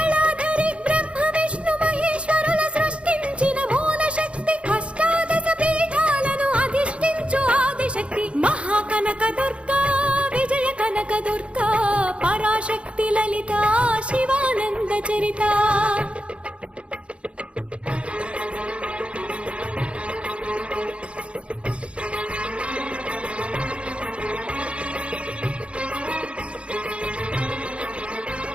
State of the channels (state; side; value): late; left; 0.060 ms